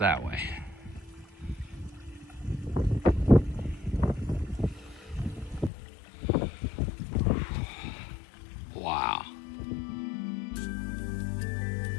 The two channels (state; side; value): drops out; right; at 5.7 s